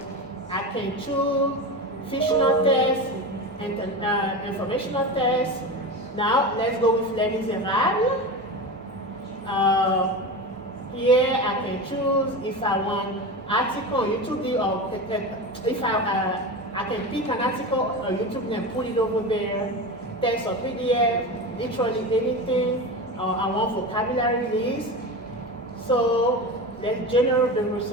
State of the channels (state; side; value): normal; both; correlation 0.25